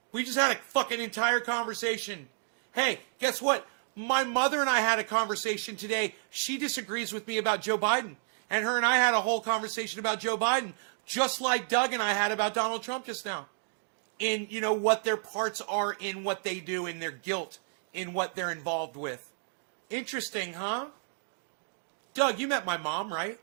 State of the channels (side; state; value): left; silent; digital silence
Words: We just had a fucking entire conversation. Hey, guess what? My mother and I had a conversation today. She disagrees with me about Joe Biden. And her and I had a whole conversation about Joe Biden, just like Doug and I had about Donald Trump just now. In, what their parts are in what they do, in their guilt, in what they're involved with. Interesting, huh? Doug, you met my mom, right?